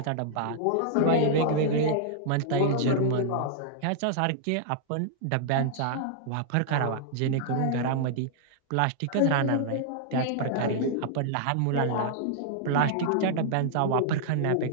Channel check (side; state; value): both; different; correlation -0.01